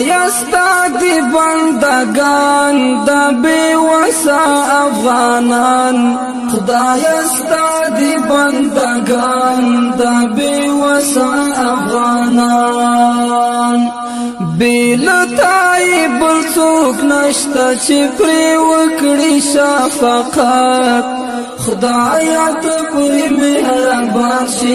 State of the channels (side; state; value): both; identical; correlation 1.00